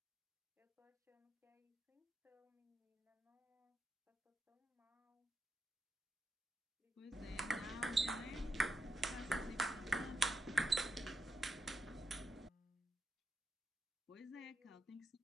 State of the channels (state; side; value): normal; both; correlation 0.84